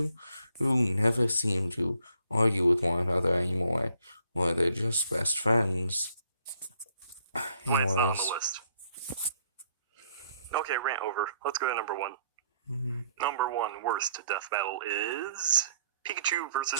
who never seem to argue with one another anymore, or they're just best friends. Why it's not on the list. Okay, rant over. Let's go to number 1. Number 1 worst death battle is Pikachu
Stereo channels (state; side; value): inverted; both; correlation -0.67